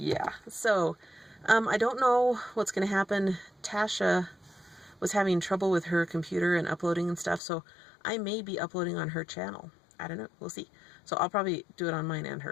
so I don't know what's going to happen. Tasha was having trouble with her computer and uploading and stuff, so I may be uploading on her channel. I don't know, we'll see. So I'll probably do it on mine and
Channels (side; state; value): right; drops out; at 7.4 s